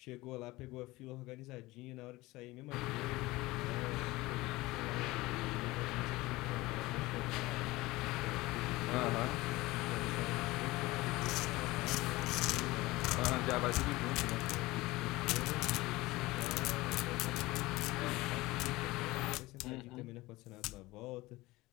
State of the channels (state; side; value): quieter; right; 20.0 dB